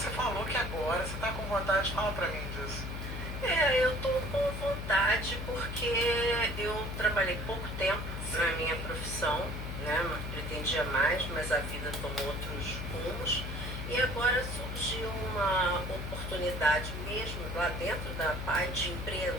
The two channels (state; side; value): noise; left; hum, 5 dB below the sound